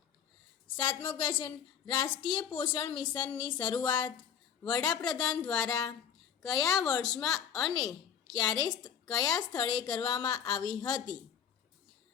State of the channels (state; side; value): quieter; right; 8.2 dB